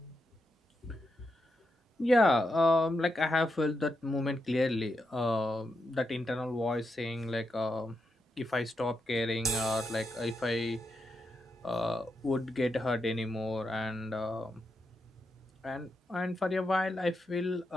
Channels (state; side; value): normal; both; correlation 0.85